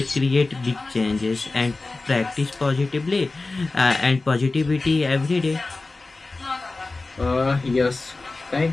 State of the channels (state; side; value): quieter; right; 3.4 dB